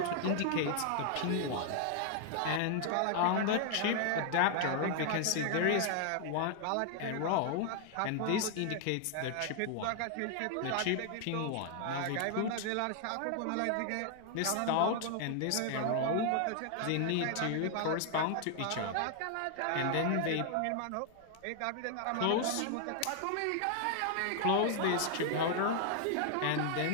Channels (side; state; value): both; different; correlation 0.00